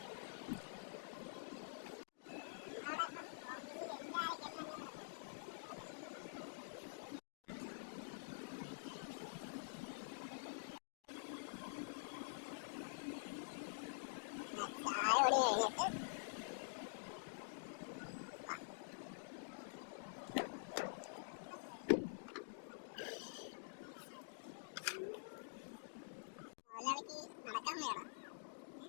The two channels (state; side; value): silent; right; digital silence